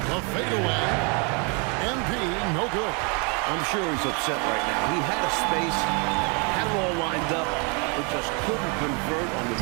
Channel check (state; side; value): quieter; left; 33.9 dB